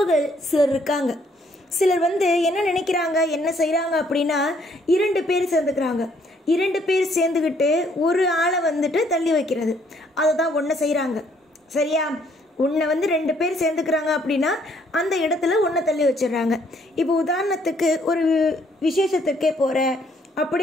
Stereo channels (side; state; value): both; normal; correlation 0.66